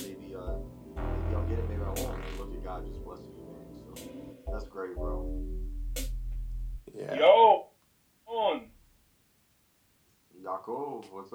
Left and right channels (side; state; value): both; identical; correlation 1.00